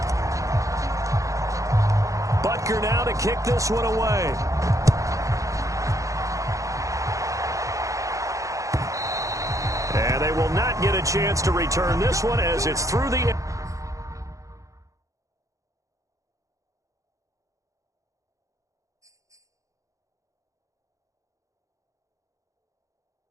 Now to kick this one away. And they will not get a chance to return this one as it's through the...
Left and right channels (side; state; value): left; late; 0.16 ms